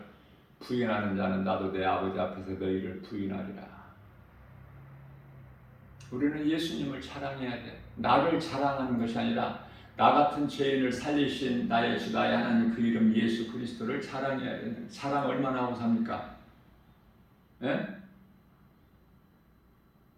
부인하는 자는 나도 내 아버지 앞에서 너희를 부인하리라. 우리는 예수님을 자랑해야 돼. 나를 자랑하는 것이 아니라 나 같은 죄인을 살리신 나의 주 나의 하나님 그 이름 예수 그리스도를 자랑해야 돼. 자랑 얼마나 하고 삽니까? 예?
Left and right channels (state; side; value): identical; both; correlation 1.00